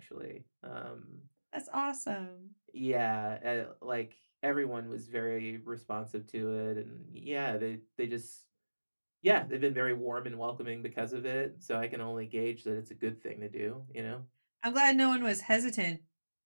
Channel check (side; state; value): both; inverted; correlation -1.00